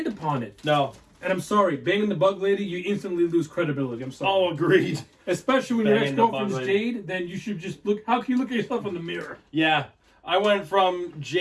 upon it. No. And I'm sorry, banging the bug lady, you instantly lose credibility. I'm sorry. Oh, agreed. Especially when your ex-girlfriend's Jade, then you should just look. How can you look at yourself in the mirror? Yeah. I went from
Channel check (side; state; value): both; identical; correlation 1.00